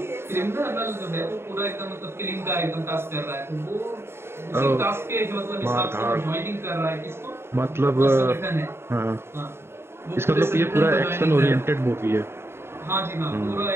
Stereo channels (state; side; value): late; left; 0.12 ms